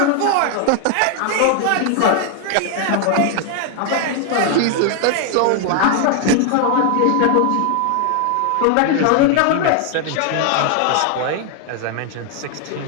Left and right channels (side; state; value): both; different; correlation 0.00